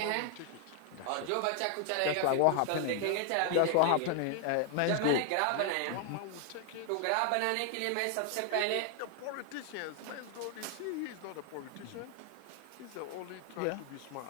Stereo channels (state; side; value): different; both; correlation 0.00